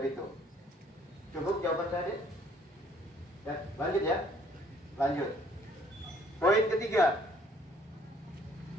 Bitung. Cukup jawaban saya, Dek? Ya, lanjut ya. Lanjut. Poin ketiga.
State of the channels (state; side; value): normal; both; correlation 0.61